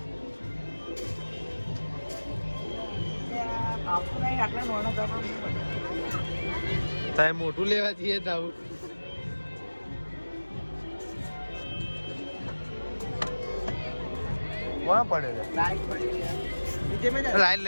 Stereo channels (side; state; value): both; inverted; correlation -1.00